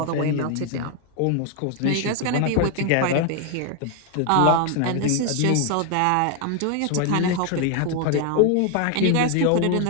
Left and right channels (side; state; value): both; different; correlation 0.01